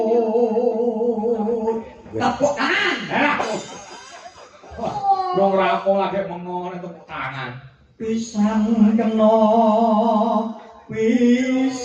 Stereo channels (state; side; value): identical; both; correlation 1.00